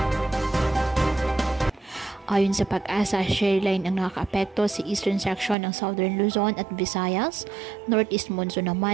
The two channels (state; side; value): drops out; left; at 5.6 s